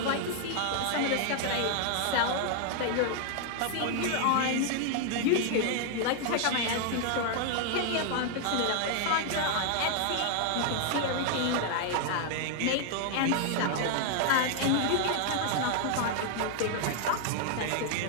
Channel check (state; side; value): different; both; correlation 0.00